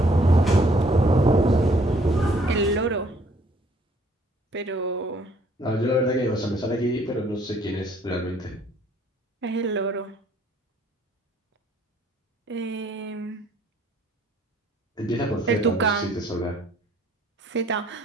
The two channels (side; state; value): both; normal; correlation 0.62